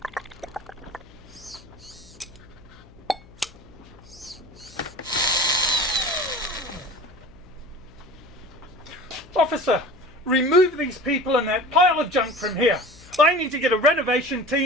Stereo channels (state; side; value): noise; left; hum, 23 dB below the sound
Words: Officer, remove these people and that pile of junk from here. I need to get a renovation